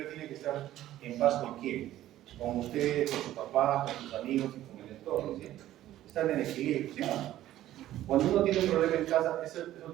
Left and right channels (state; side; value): quieter; left; 13.7 dB